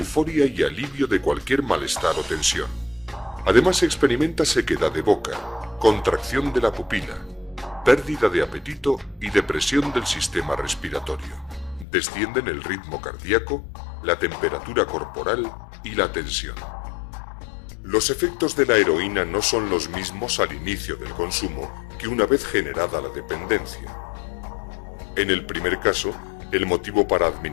y alivio de cualquier malestar o tensión. Además experimenta sequedad de boca, contracción de la pupila, pérdida de apetito y depresión del sistema respiratorio. Descienden el ritmo cardíaco, la temperatura corporal y la tensión. Los efectos de la heroína no son los mismos al inicio del consumo que una vez generada la dependencia. En el primer caso, el motivo para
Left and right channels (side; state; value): right; drops out; at 11.9 s